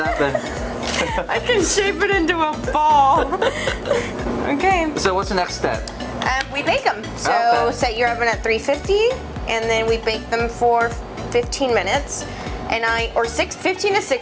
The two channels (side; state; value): both; identical; correlation 1.00